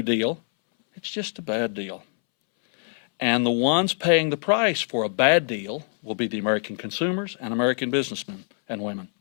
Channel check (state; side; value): silent; right; 62 dB below the other